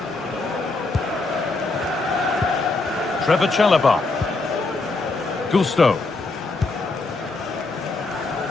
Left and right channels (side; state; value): right; quieter; 3.5 dB